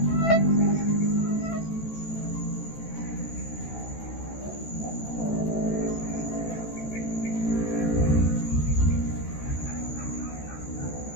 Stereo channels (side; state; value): right; late; 13 ms